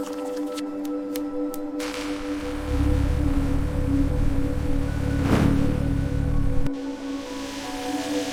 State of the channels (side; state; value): both; identical; correlation 1.00